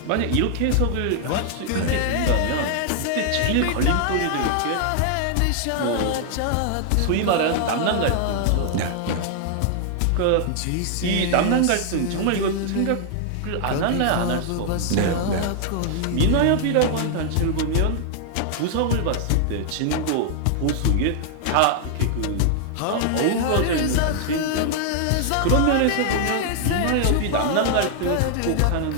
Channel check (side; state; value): both; different; correlation 0.00